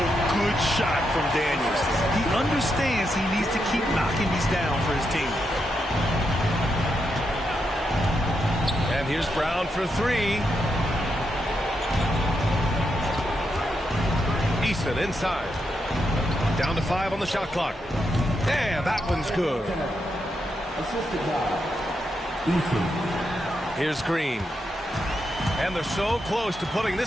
good shot from Daniels. He understands he needs to keep knocking these down for his team. And here's Brown for 3. Eason inside. Down to 5 on the shot clock. And that one's good. Here's Green. And they're so close to putting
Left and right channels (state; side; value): normal; both; correlation 0.83